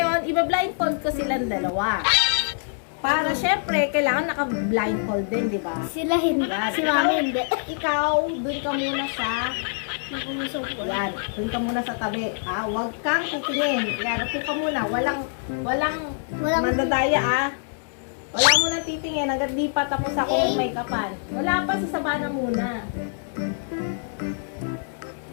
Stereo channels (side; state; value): right; silent; digital silence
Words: iba-blindfold ko silang dalawa. Para syempre, kailangan naka-blindfold din, di ba? Sila hindi. Si Mami hindi. Ikaw, dun ka muna sa... Yan, dun ka muna sa tabi. Huwag kang titingin. Yan, upo ka muna. Walang mandadaya, Wala muna titingin. Hanggang di pa tapos ako make-upan. Wala pa, sa Savannah muna.